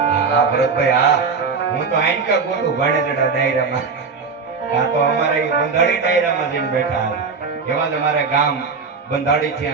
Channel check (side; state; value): left; quieter; 5.0 dB